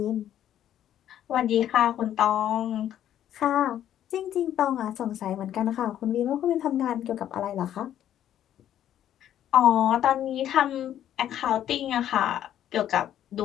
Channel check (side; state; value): right; quieter; 11.1 dB